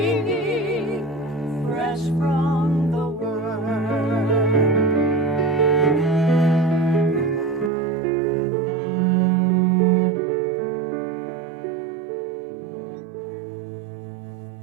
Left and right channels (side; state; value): left; drops out; at 7.7 s